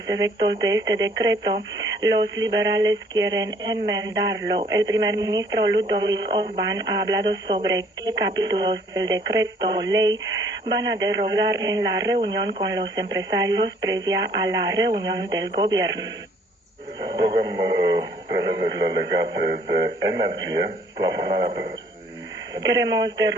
efectos de este decreto, los liberales quieren enmendarlo. El primer ministro Ludovic Orban ha hablado sobre qué capítulos del decreto ley van a derogar en la reunión con los empresarios previa a la reunión del gobierno. Program prevede legate de energie, plafonarea prețului. Queremos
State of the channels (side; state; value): both; normal; correlation 0.60